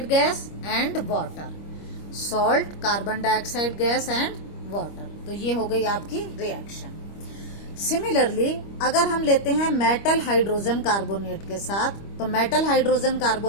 gas and water, salt, carbon dioxide gas and water. तो ये हो गई आपकी रिएक्शन। सिमिलरली अगर हम लेते हैं मेटल हाइड्रोजन कार्बोनेट के साथ, तो मेटल हाइड्रोजन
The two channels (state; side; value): late; right; 25 ms